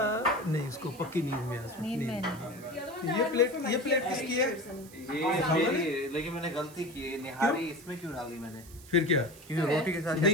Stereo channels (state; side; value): noise; right; hiss, 20 dB below the sound